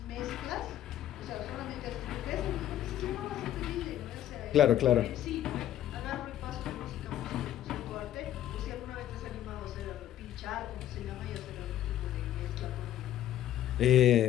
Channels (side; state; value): right; quieter; 12.1 dB